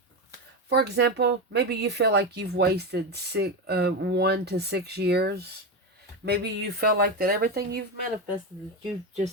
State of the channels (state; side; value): normal; both; correlation 0.15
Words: For example, maybe you feel like you've wasted 1 to 6 years. Maybe you feel like that everything you've manifested, you